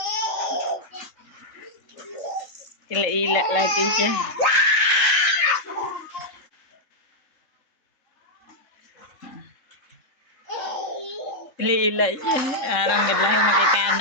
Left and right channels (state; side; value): late; right; 3.7 ms